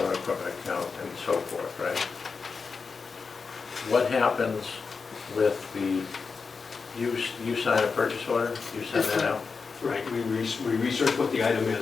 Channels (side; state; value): right; quieter; 5.0 dB